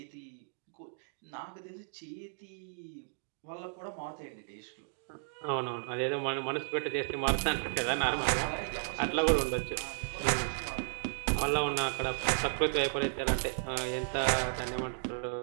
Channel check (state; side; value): silent; left; digital silence